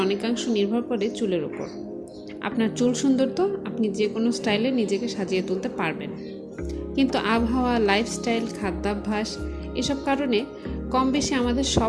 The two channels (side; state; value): both; identical; correlation 1.00